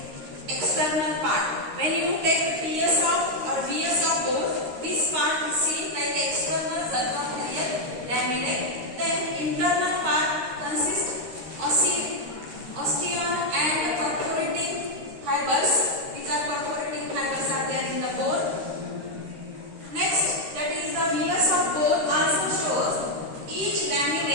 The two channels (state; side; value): late; left; 13 ms